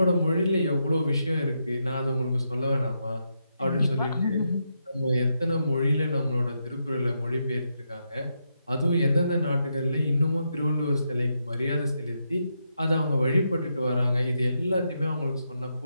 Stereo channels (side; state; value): both; inverted; correlation -0.82